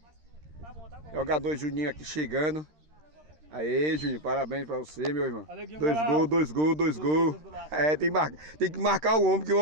Jogador Juninho aqui chegando. Aê, Juninho, parabéns pra você, meu irmão. 2 gols. É, tem que marcar o homem, porque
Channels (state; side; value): late; left; 13 ms